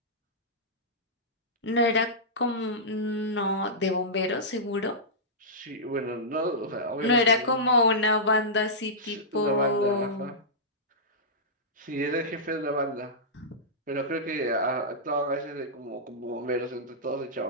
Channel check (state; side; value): normal; both; correlation -0.13